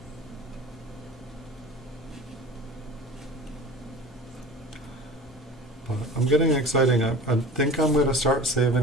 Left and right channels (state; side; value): normal; both; correlation 0.39